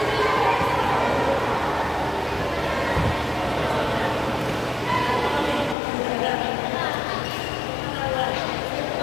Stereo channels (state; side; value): drops out; right; at 5.8 s